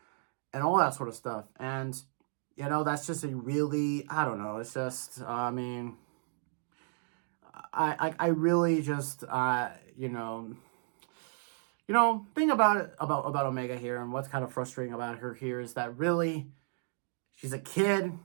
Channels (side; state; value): left; silent; digital silence